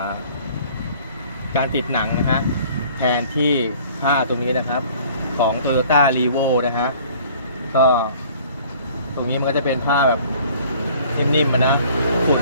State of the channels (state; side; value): inverted; both; correlation -0.53